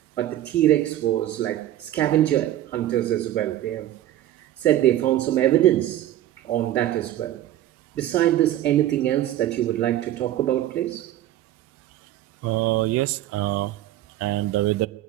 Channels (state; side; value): quieter; left; 13.3 dB